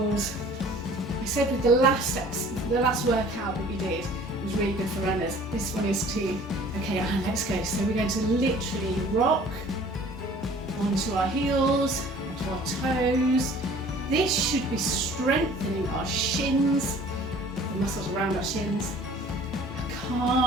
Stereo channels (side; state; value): both; normal; correlation 0.50